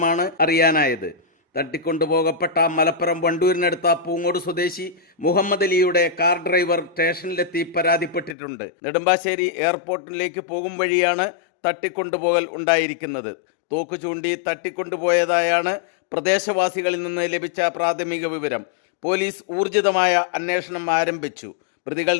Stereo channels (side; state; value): right; drops out; at 8.3 s